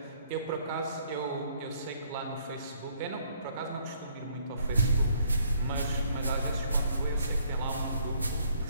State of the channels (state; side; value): inverted; both; correlation -0.65